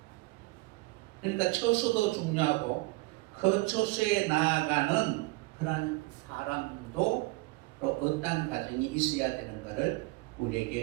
그러니까 처소도 중요하고 그 처소에 나아가는 그런 사람도 또 어떤 과정이 있어야 되는가를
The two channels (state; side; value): quieter; left; 23.5 dB